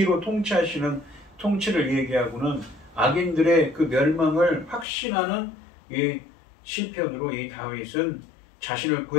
통치하시는 통치를 얘기하고는 악인들의 그 멸망을 확신하는 이 시편으로 이 다윗은 자신을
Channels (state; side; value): drops out; right; at 4.9 s